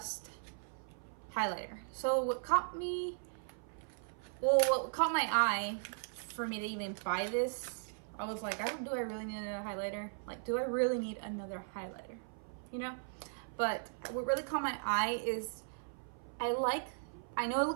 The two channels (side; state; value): left; silent; 53 dB below the other